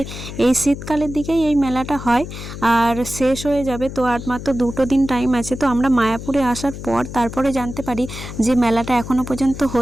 এই শীতকালের দিকেই এই মেলাটা হয় আর শেষ হয়ে যাবে। তো আর মাত্র 2 দিন টাইম আছে। তো আমরা মায়াপুরে আসার পর তারপরে জানতে পারি যে মেলাটা এখনও পর্যন্ত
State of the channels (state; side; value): noise; left; hum, 10 dB below the sound